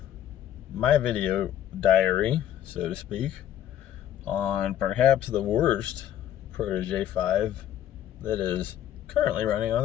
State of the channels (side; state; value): right; quieter; 11.1 dB